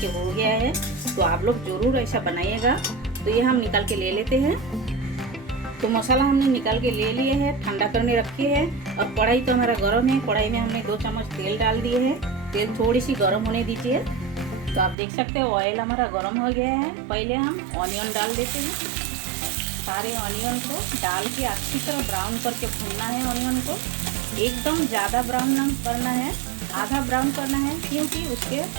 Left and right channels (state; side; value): drops out; left; at 15.0 s